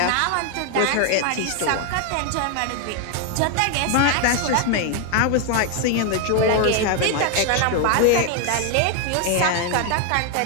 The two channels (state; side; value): different; both; correlation 0.01